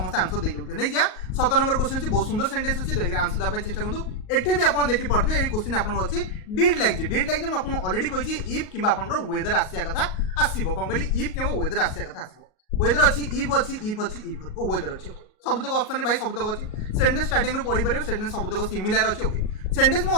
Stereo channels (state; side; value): late; right; 38 ms